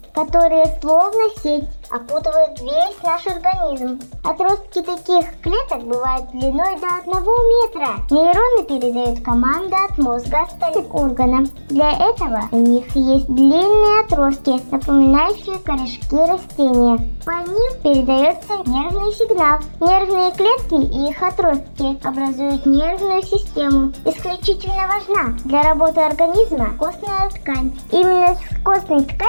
которые словно сеть опутывают весь наш организм. Отростки таких клеток бывают длиной до 1 метра. Нейроны передают команды от мозга остальным органам. Для этого у них есть длинные отростки, напоминающие корешки растения. По ним передается нервный сигнал. Нервные клетки и их отростки образуют нервную систему. Исключительно важна для работы организма костная ткань. Именно с костной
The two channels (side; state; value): both; inverted; correlation -1.00